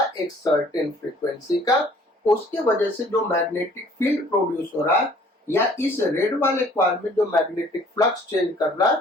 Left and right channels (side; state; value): both; normal; correlation 0.55